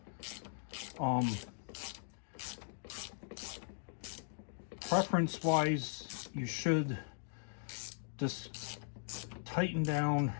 Preference wise, you should just tighten down,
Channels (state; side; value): silent; right; digital silence